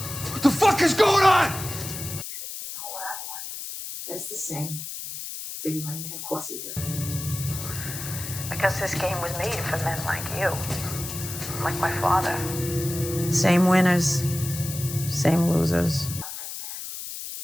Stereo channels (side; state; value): left; noise; hiss, 8 dB below the sound